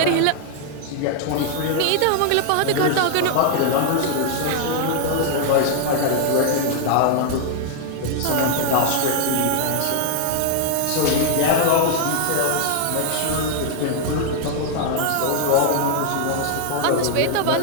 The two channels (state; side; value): different; both; correlation 0.00